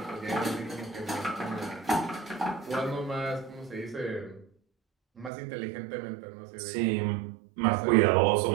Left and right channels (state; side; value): drops out; left; at 5.3 s